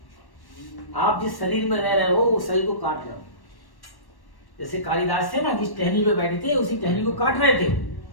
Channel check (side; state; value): right; late; 1.1 ms